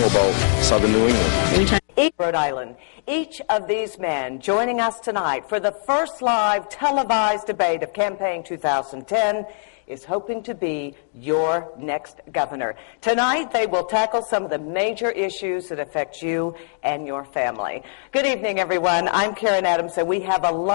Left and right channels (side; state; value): right; silent; digital silence